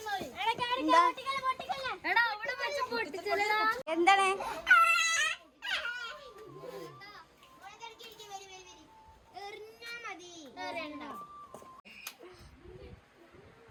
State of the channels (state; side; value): identical; both; correlation 1.00